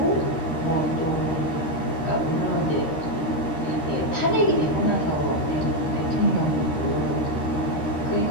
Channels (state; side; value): late; right; 13 ms